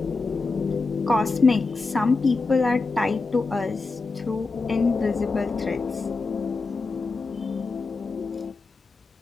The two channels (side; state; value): right; quieter; 3.9 dB